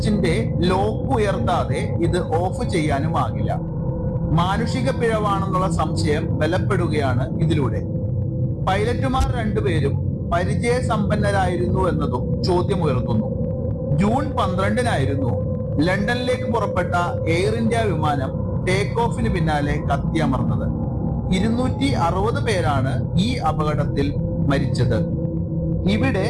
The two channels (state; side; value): identical; both; correlation 1.00